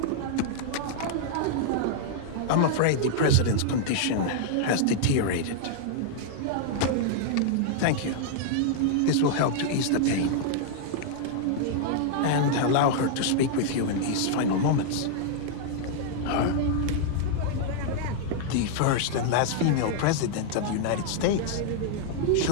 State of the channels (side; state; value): both; different; correlation -0.01